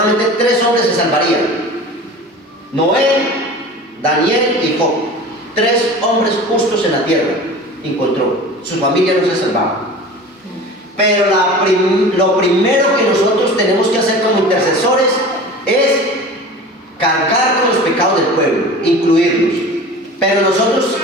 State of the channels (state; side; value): normal; both; correlation 0.37